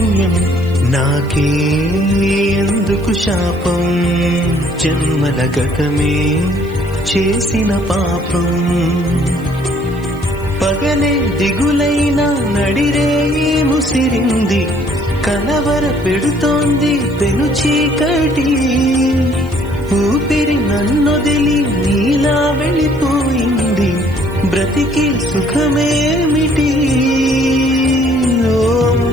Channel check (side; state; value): right; noise; hiss, 26 dB below the sound